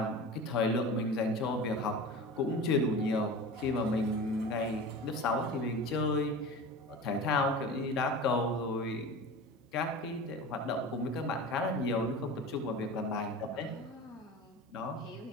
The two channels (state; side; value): normal; both; correlation 0.33